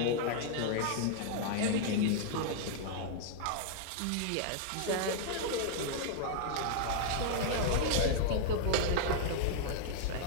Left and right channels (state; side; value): different; both; correlation -0.01